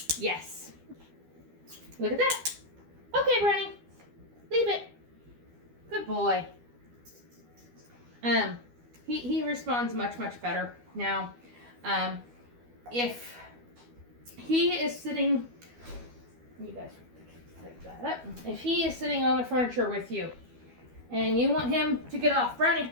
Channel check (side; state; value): left; late; 12 ms